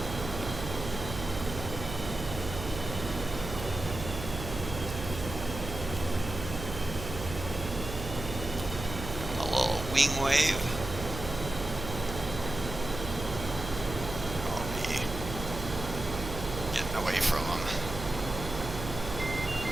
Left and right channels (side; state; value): right; noise; hum, 7 dB below the sound